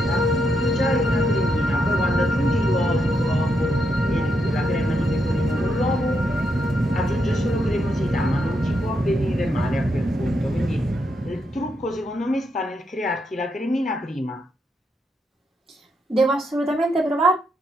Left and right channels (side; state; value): both; normal; correlation 0.80